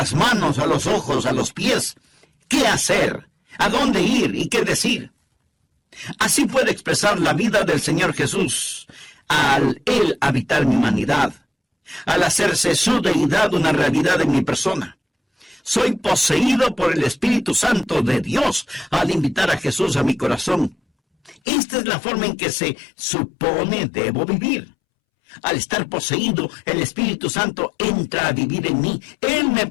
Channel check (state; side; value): drops out; right; at 21.4 s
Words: manos, a los ojos, a los pies, qué hacer, a dónde ir y qué decir. Así puede expresar la vida del Señor Jesús al Él habitar mi humanidad, al hacerse su deidad una realidad en mi persona. Soy poseído por el Espíritu Santo de Dios al invitar a Jesús a mi corazón. Esta es la forma en que se supone debo vivir. Al estar poseído, el Espíritu Santo entra a vivir en mí. Él me